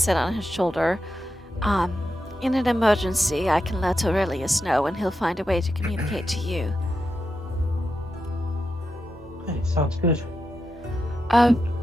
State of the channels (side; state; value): both; normal; correlation 0.87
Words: on his shoulder. In an emergency, I can let Aurelius know, and he'll find a way to communicate to you. Hey, sounds good.